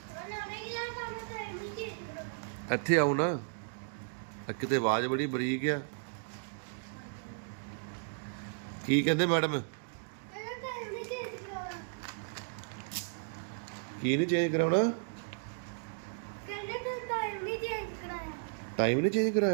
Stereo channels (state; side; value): silent; left; digital silence